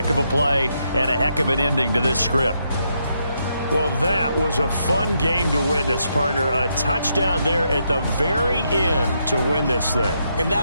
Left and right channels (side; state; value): both; inverted; correlation -0.79